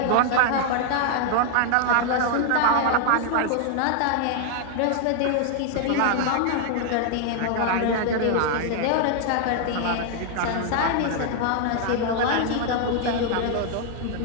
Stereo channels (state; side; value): different; both; correlation 0.00